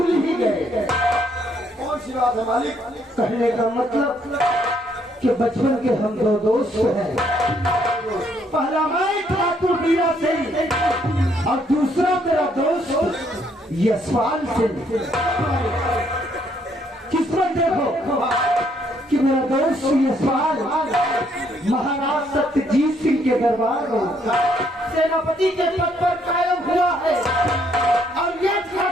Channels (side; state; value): both; normal; correlation 0.69